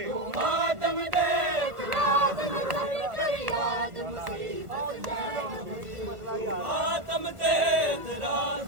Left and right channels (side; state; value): left; late; 1.5 ms